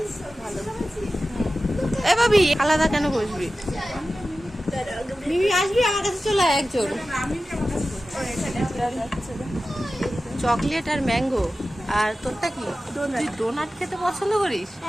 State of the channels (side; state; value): both; normal; correlation 0.95